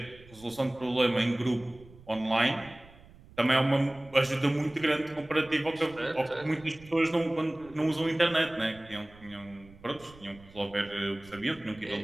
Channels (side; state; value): right; noise; rumble, 23 dB below the sound